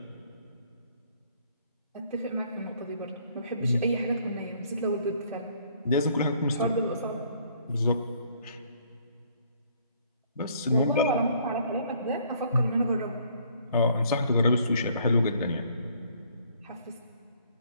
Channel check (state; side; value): inverted; both; correlation -0.62